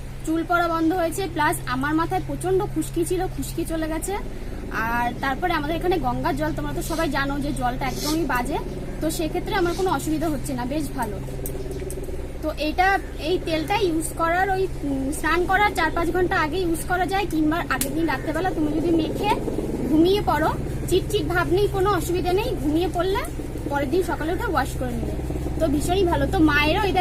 চুল পড়া বন্ধ হয়েছে, প্লাস আমার মাথায় প্রচন্ড খুশকি ছিল, খুশকি চলে গেছে। আর তারপরে আমাদের এখানে গঙ্গার জল, তোমরা তো সবাই জানো যে জলটা একদমই বাজে, তো সেক্ষেত্রে আমার কোনো অসুবিধা হচ্ছে না, বেশ ভালো। তো এই তেলটা ইউজ করার ওই স্নান করার 4-5 ঘন্টা আগে ইউজ করা যায়, কিংবা আগের দিন রাত্রেবেলা তুমি যদি মেখে ঘুমিয়ে পড়ো, চিটচিট ভাব নেই, কোনো অসুবিধা নেই, ঘুমিয়ে পড়লে পরের দিন সকালে উঠে ওয়াশ করে নেবে। তো ভীষণই ভালো। তো মায়েরও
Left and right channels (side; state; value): both; identical; correlation 1.00